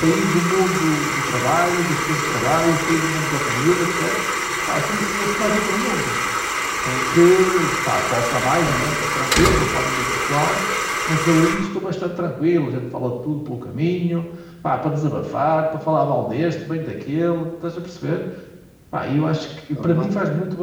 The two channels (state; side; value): identical; both; correlation 1.00